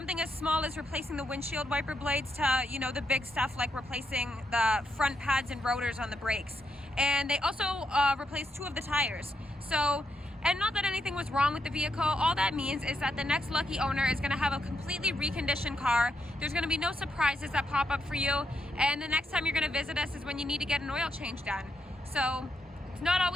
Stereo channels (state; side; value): normal; both; correlation 0.80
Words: as small as replacing the windshield wiper blades to, you know, the big stuff like replacing the front pads and rotors on the brakes. And they also replaced 2 of the tires. So, and not that anything was wrong with the vehicle, all that means is that the next lucky owner is gonna have a completely reconditioned car. There's gonna be no surprises that pop up for you, and the next time you're gonna visit us is when you need to get an oil change done. So it's not